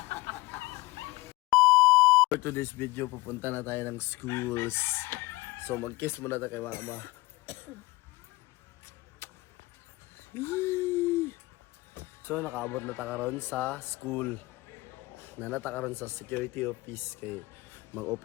For today's video, pupunta na tayo ng schools. So mag-kiss muna tayo kay mama. So nakaabot na takaron sa school. Nanatakaron sa security office kay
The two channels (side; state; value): right; quieter; 21.1 dB